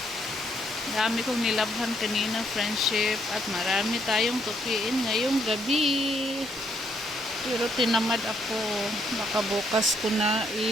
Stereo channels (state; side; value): normal; both; correlation 0.72